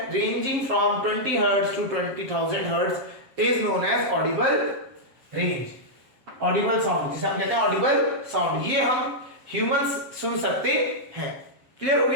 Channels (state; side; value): late; left; 7.5 ms